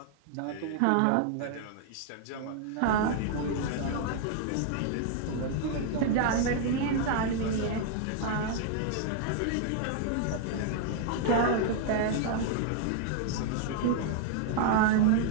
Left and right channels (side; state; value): both; different; correlation 0.00